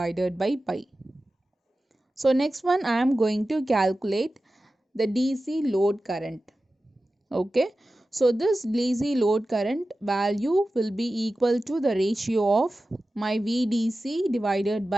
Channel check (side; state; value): both; normal; correlation 0.94